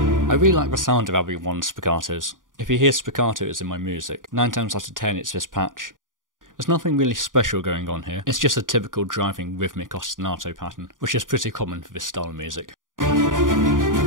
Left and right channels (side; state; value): left; late; 0.89 ms